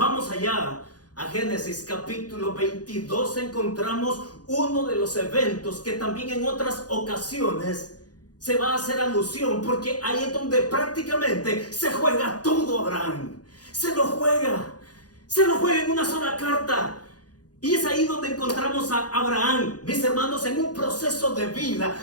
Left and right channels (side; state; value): right; late; 0.69 ms